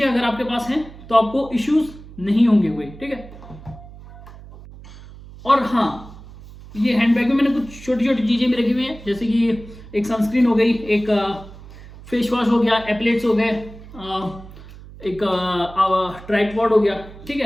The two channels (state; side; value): noise; right; hum, 17 dB below the sound